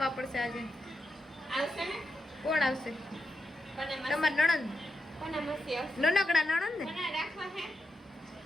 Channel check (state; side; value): normal; both; correlation 0.86